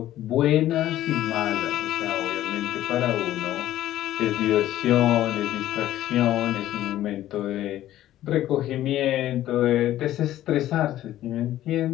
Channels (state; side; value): quieter; right; 13.5 dB